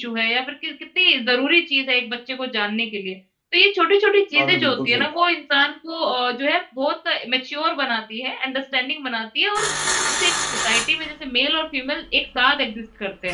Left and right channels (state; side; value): identical; both; correlation 1.00